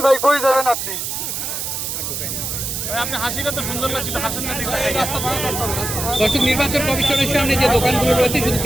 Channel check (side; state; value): right; noise; hiss, 4 dB below the sound